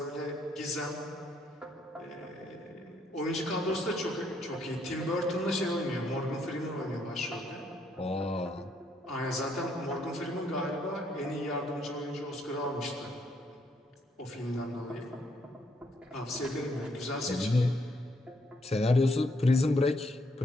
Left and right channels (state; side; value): normal; both; correlation 0.72